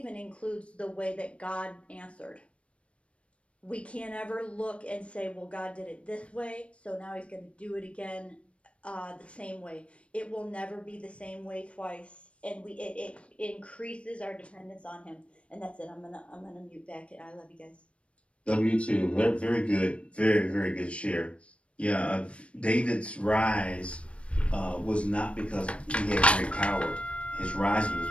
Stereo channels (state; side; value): late; right; 0.061 ms